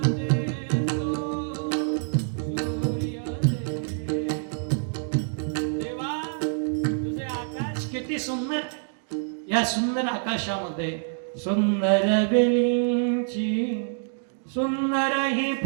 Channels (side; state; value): left; silent; digital silence